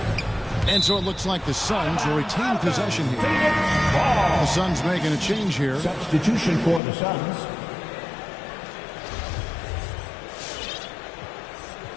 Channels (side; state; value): right; drops out; at 6.8 s